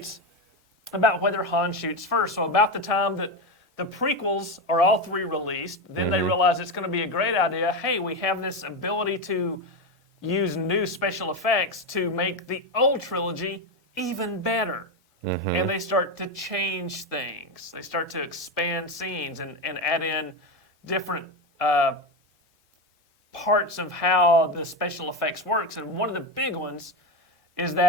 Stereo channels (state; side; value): normal; both; correlation 0.15